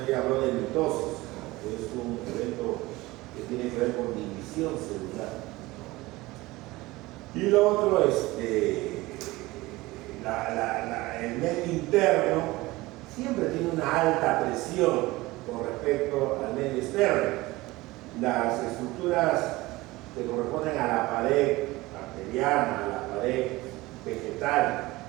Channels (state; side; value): quieter; left; 20.1 dB